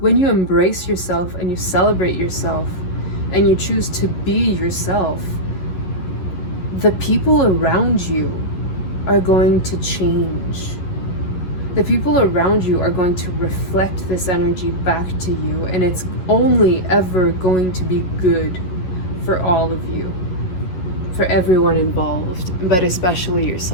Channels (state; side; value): late; right; 11 ms